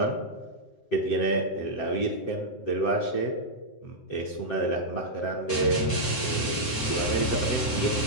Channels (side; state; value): right; late; 7.8 ms